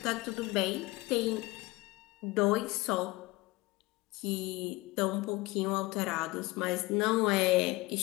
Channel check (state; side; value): quieter; right; 21.9 dB